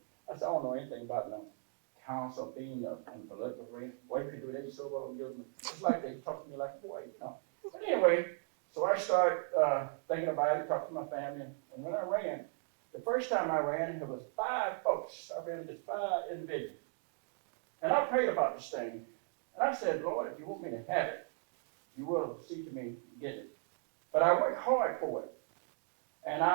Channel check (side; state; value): left; silent; 53 dB below the other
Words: I said, I don't know anything about no council being in political arena. Boy, you could do that so well, it's like they talk to me like a boy, But anyway, so I started thinking about it, talking to my family, and when I ran, the first time I ran, there was 5 folks. I ran against 5 individuals. And I prayed about this thing, and I said, Lord, if you want me to have it, you will see to me get it. But I worked hard for it, and